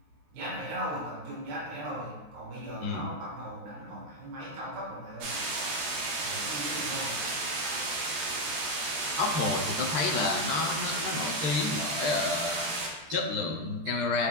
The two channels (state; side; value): late; left; 13 ms